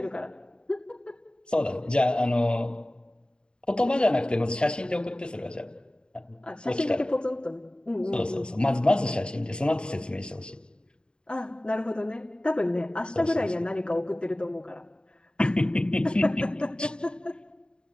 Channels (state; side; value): late; right; 0.050 ms